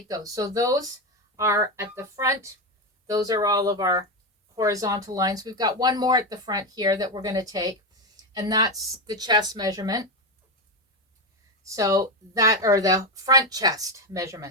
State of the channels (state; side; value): normal; both; correlation 0.11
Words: those. So those are at the front. Those are all of our horizontal lines. We've got one more at the front here that we're going to take, and that's the chest measurement. So that, or the front chest